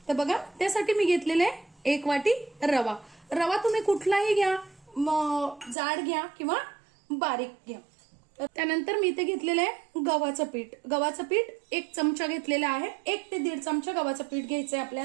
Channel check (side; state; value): left; drops out; at 5.8 s